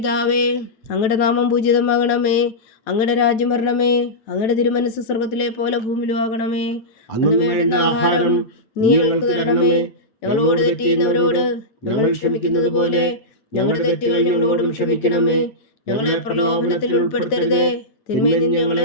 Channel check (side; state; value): right; late; 9.0 ms